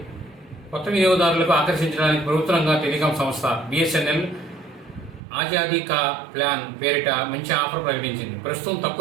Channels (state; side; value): drops out; left; at 5.2 s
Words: కొత్త వినియోగదారులకు ఆకర్షించడానికి ప్రభుత్వంగా టెలికాం సంస్థ బిఎస్ఎన్ఎల్ ఆజాదీ కా ప్లాన్ పేరిట మంచి ఆఫర్ ప్రకటించింది. ప్రస్తుతం